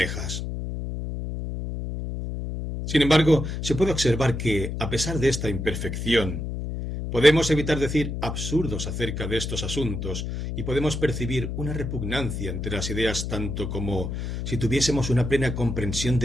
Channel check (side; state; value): left; noise; hum, 4 dB below the sound